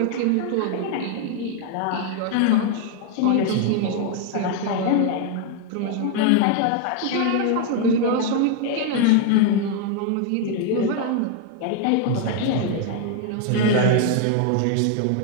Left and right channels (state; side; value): different; both; correlation 0.01